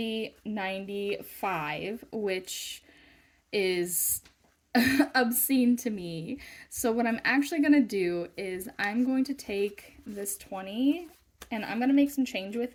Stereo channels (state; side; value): identical; both; correlation 1.00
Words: 95, which is obscene to me. So what I'm actually going to do is I'm going to take this 20 and I'm going to make some change with